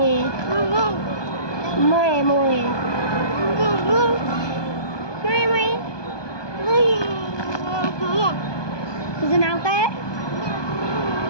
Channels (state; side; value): late; right; 1.2 ms